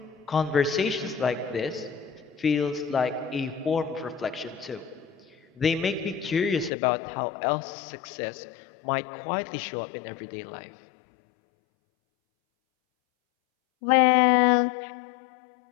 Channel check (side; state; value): right; drops out; at 6.7 s